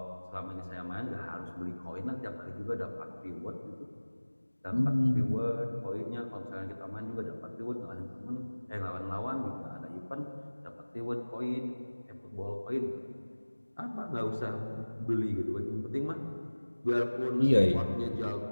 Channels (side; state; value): both; inverted; correlation -1.00